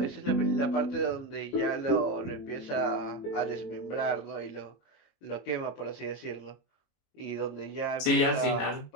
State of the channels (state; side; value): late; right; 22 ms